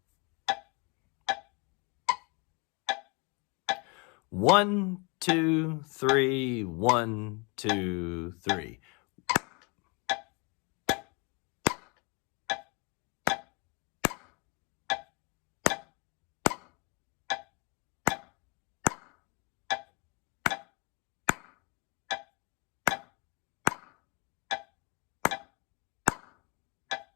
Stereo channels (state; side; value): quieter; right; 31.1 dB